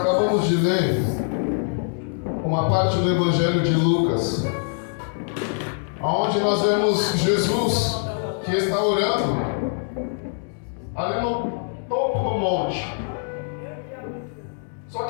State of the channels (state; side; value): silent; right; 61 dB below the other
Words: de ler uma parte do Evangelho de Lucas, onde nós vemos Jesus que está orando ali no topo do monte. Só